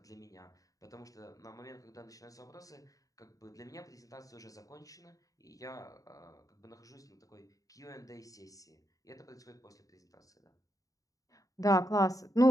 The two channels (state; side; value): late; right; 0.17 ms